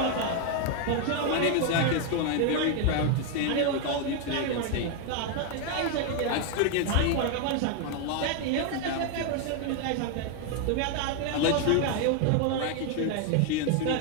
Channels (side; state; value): both; different; correlation 0.01